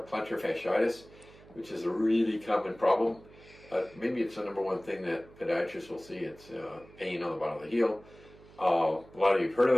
plantar fasciitis, which is a really common problem. Maybe it's the number one thing that podiatrists will see. It's pain on the bottom of the heel. A lot of you have heard of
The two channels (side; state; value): right; noise; hum, 23 dB below the sound